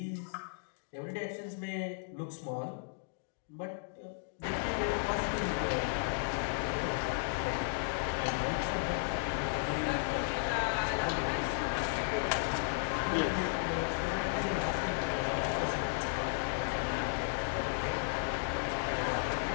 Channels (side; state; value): right; silent; digital silence